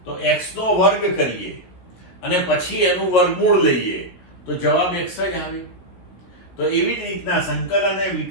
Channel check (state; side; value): late; right; 16 ms